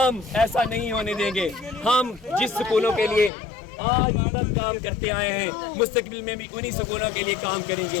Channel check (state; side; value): drops out; right; at 3.3 s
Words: ऐसा नहीं होने देंगे। हम जिस स्कूलों के लिए आज तक काम करते आए हैं, मुस्तकबिल में भी उन्हीं स्कूलों के लिए काम